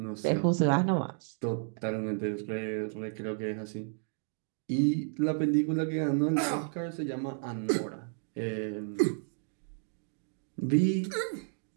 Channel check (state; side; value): silent; left; digital silence